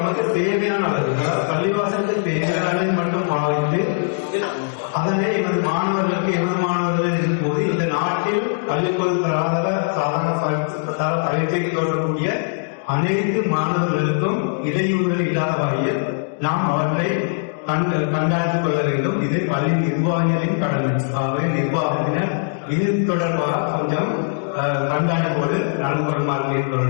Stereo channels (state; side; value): silent; right; digital silence